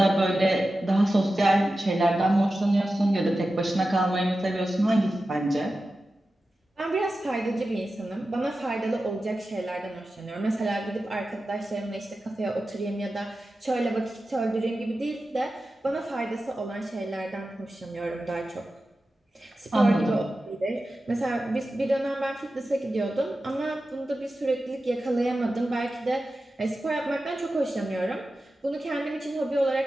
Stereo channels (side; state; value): both; normal; correlation 0.93